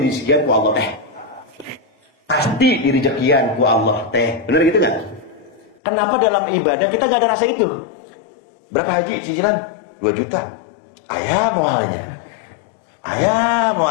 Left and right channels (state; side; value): drops out; right; at 5.8 s